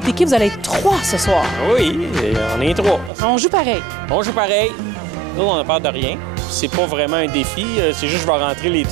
équipe, vous allez être 3 ce soir. Oui, on est 3. On joue pareil. On joue pareil. Nous, on n'a peur de rien. C'est pas vraiment un défi. C'est juste que je vais rentrer les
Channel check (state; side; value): drops out; left; at 3.1 s